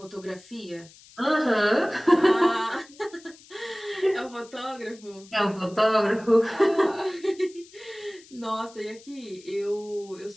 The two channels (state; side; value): noise; left; hiss, 23 dB below the sound